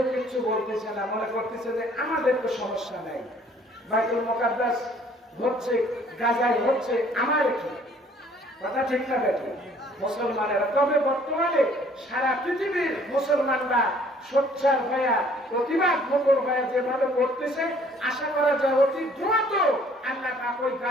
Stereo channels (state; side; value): normal; both; correlation 0.58